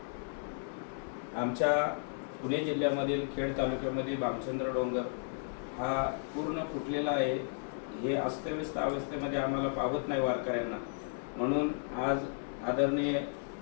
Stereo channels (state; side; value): silent; right; digital silence